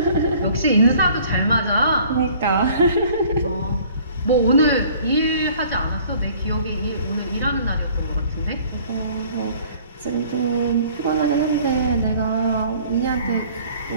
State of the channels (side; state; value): both; inverted; correlation -0.53